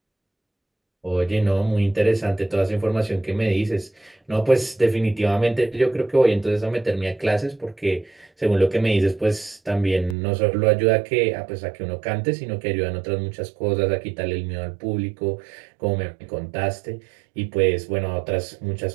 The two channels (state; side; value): drops out; left; at 10.2 s